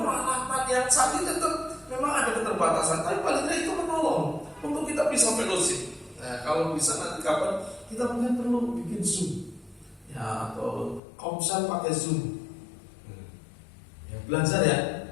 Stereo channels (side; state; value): right; drops out; at 11.0 s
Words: yang canggih, tetap memang ada keterbatasan. Tapi paling tidak itu menolong untuk kita bisa fellowship. Nah, kalau bisa nanti kapan kita mungkin perlu bikin Zoom ya, atau komsel pakai Zoom. Ya, belajar ya.